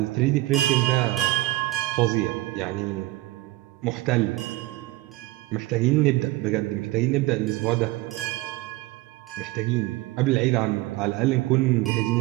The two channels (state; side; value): quieter; left; 18.9 dB